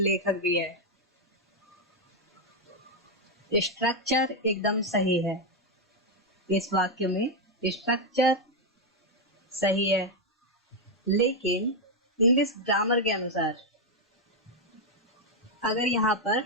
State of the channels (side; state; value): both; normal; correlation 0.02